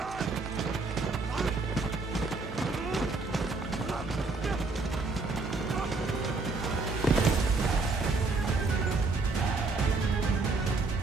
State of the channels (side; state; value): left; quieter; 3.8 dB